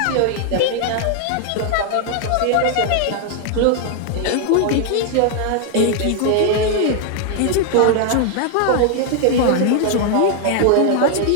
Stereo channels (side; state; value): both; different; correlation 0.00